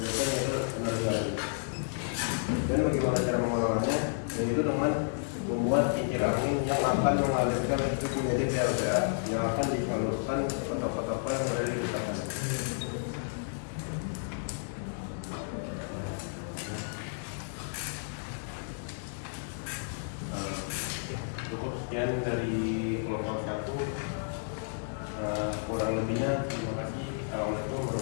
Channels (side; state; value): right; silent; digital silence